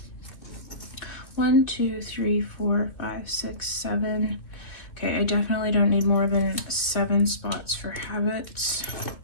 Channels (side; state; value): right; late; 2.5 ms